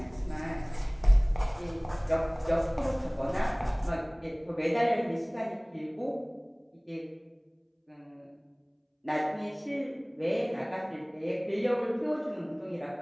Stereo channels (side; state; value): both; identical; correlation 1.00